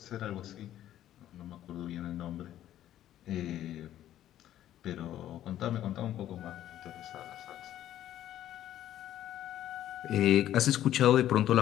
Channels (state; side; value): quieter; right; 12.3 dB